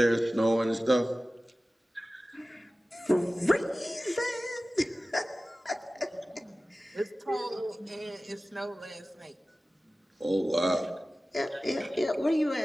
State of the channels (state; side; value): normal; both; correlation 0.96